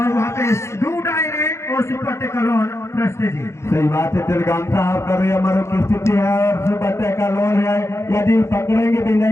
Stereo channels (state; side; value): late; right; 0.13 ms